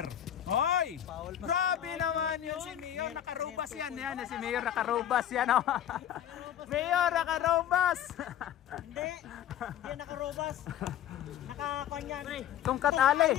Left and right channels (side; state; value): right; quieter; 10.8 dB